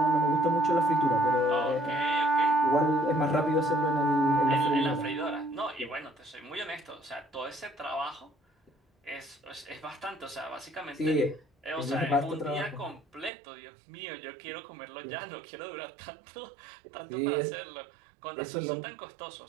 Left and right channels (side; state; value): left; drops out; at 13.3 s